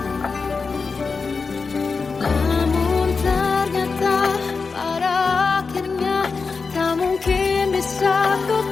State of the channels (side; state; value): right; quieter; 4.7 dB